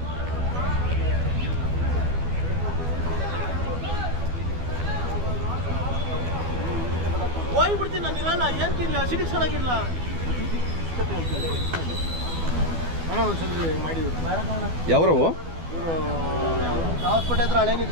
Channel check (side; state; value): left; late; 12 ms